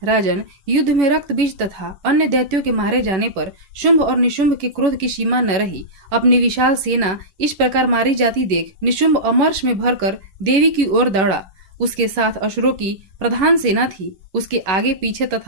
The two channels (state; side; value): late; left; 11 ms